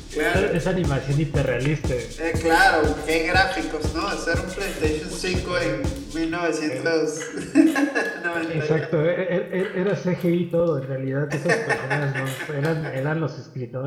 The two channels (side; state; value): both; identical; correlation 1.00